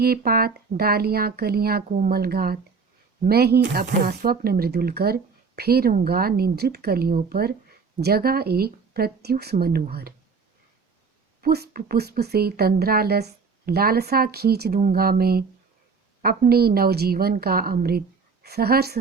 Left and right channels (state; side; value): quieter; left; 5.1 dB